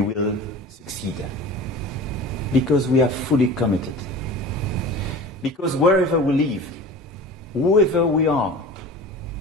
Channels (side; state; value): both; normal; correlation 0.37